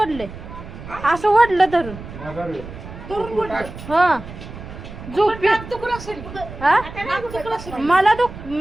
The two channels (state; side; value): noise; right; rumble, 13 dB below the sound